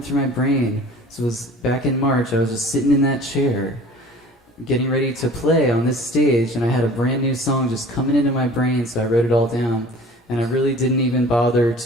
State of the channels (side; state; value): both; normal; correlation 0.45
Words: through my brain. So it was back in March. I was just sitting in that chair, getting ready to play on this stage, and I had a brand new song just coming into my brain, so I wrote it all down, and I really didn't even bother